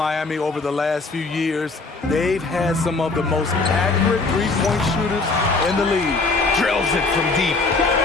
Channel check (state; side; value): quieter; right; 3.7 dB